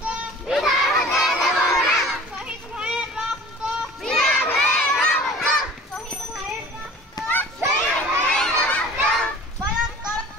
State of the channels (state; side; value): normal; both; correlation 0.44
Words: বৃথা হতে দেব না। শহীদ ভাইয়ের রক্ত বৃথা হতে দেব না। শহীদ ভাইয়ের রক্ত শহীদ ভাইয়ের রক্ত পালন করো